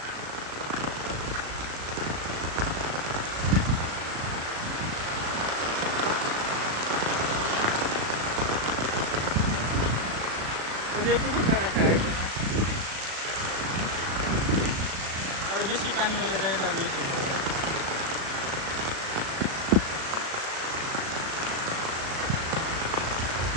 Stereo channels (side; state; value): left; late; 36 ms